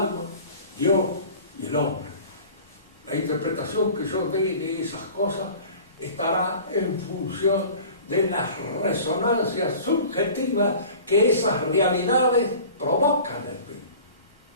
Dios y el hombre. La interpretación que yo dé de esas cosas estará en función de las resonancias subjetivas que esas realidades provocan en mí.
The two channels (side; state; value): both; inverted; correlation -0.42